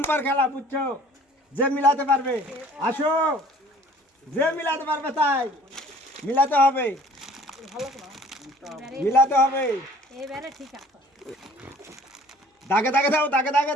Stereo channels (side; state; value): both; normal; correlation 0.51